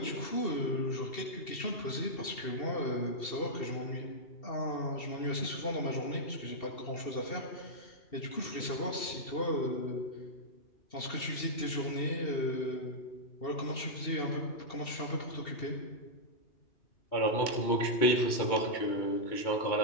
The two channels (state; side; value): late; right; 2.7 ms